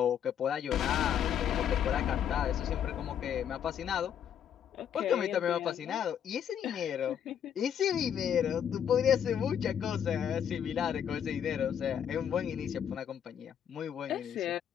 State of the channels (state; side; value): quieter; right; 8.9 dB